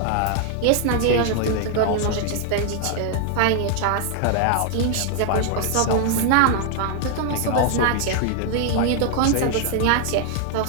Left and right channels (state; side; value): different; both; correlation 0.00